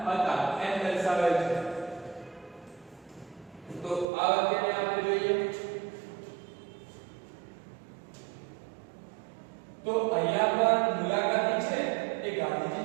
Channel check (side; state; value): left; drops out; at 4.0 s